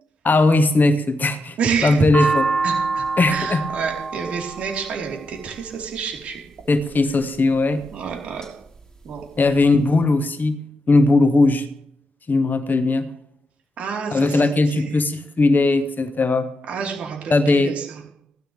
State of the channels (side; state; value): both; normal; correlation 0.85